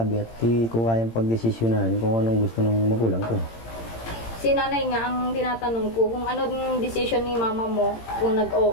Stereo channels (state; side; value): late; right; 18 ms